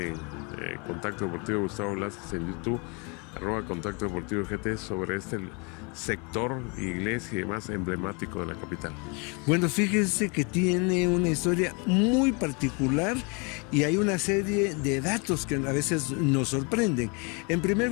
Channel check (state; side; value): quieter; right; 32.2 dB